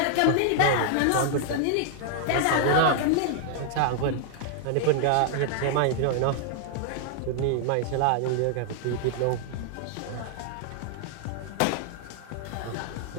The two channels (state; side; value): different; both; correlation 0.00